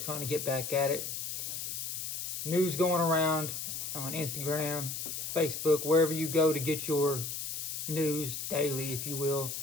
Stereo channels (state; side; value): noise; left; hiss, 4 dB below the sound